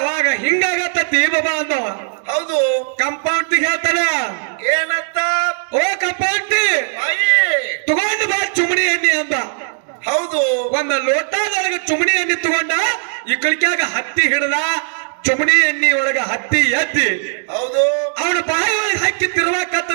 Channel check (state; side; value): silent; left; digital silence